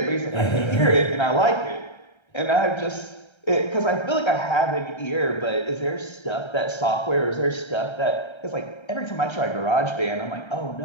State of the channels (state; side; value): late; right; 1.3 ms